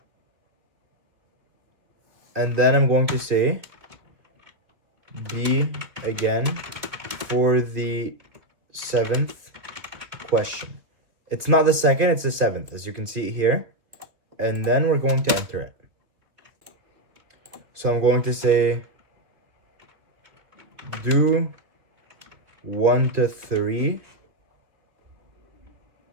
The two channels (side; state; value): left; late; 2.4 ms